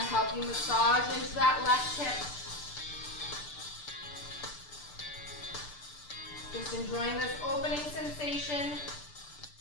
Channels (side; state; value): right; late; 6.8 ms